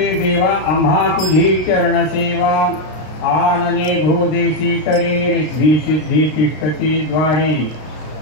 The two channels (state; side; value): late; right; 33 ms